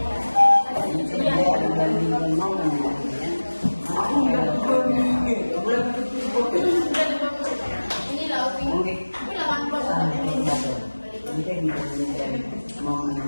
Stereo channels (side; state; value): both; inverted; correlation -1.00